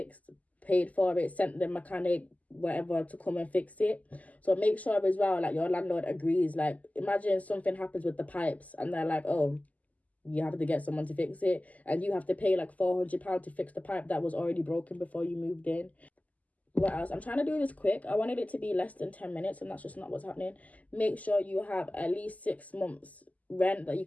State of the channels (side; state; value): right; late; 0.075 ms